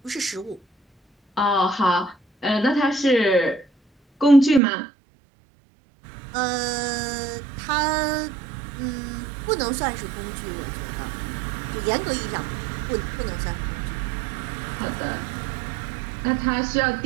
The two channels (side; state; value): left; drops out; at 4.6 s